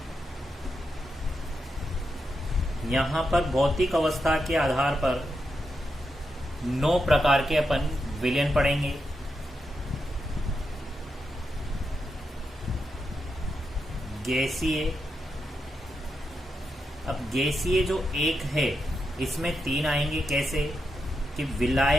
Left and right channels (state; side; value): normal; both; correlation 0.85